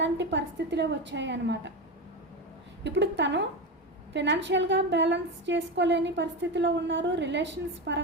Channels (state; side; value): normal; both; correlation 0.18